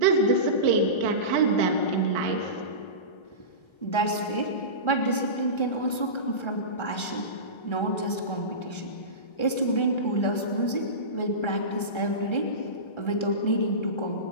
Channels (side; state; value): right; late; 1.3 ms